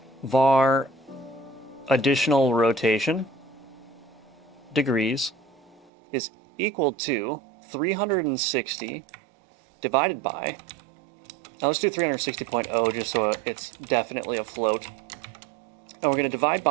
Var additional rotation degrees is equal to 360 divided by, now let's do 360.0 just so it's definitely a float. And we're going to divide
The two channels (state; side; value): drops out; left; at 5.9 s